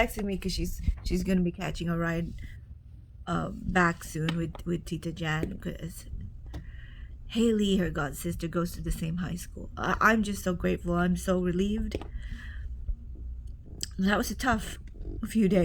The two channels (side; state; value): both; identical; correlation 1.00